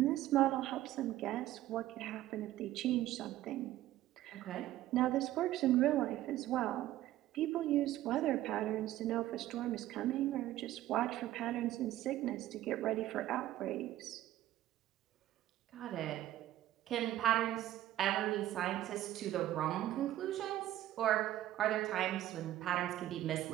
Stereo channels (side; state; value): left; quieter; 14.2 dB